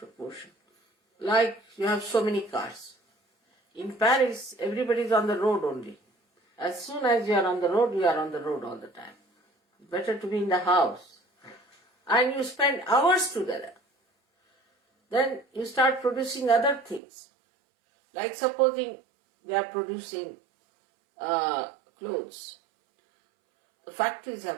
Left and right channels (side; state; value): left; drops out; at 17.0 s